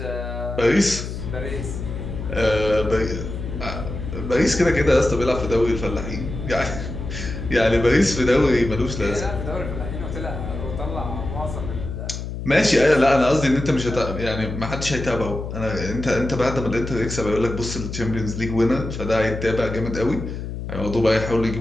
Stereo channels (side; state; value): left; noise; hum, 7 dB below the sound